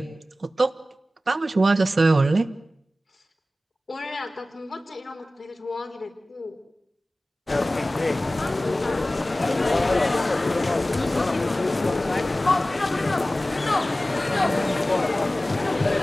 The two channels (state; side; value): normal; both; correlation 0.96